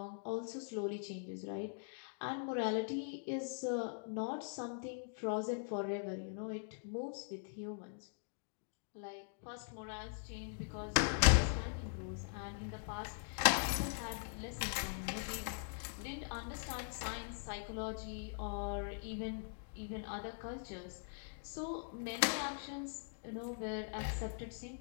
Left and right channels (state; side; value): silent; right; digital silence